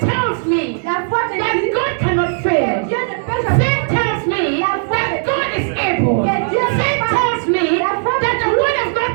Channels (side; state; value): left; silent; 62 dB below the other